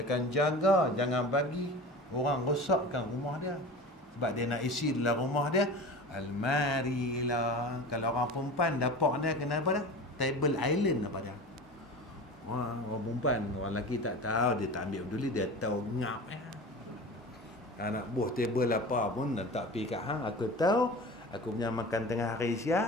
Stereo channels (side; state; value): both; normal; correlation 0.34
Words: akan jaga, jangan bagi orang rosakkan rumah dia. Sebab dia nak isi dalam rumah dia almari lah. Kalau orang perempuan dapak dia kena apa dah? Table island apa dia? Orang perempuan, orang lelaki tak tahu, dia tak ambil peduli, dia tahu ngap anak buah table apa pun tak pergi kat hang, aku tahu aku punya makan tengah hari